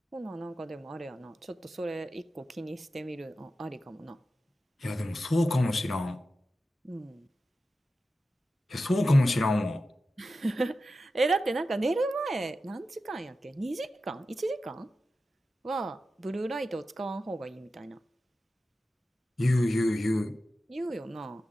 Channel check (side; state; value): both; normal; correlation 0.92